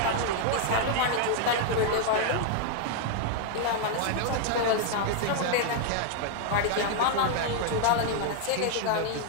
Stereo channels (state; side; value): different; both; correlation 0.00